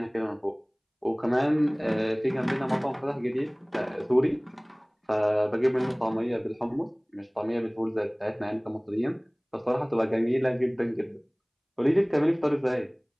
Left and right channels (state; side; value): identical; both; correlation 1.00